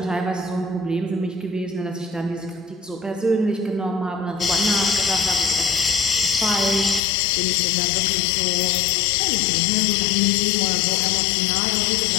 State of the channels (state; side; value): drops out; right; at 7.0 s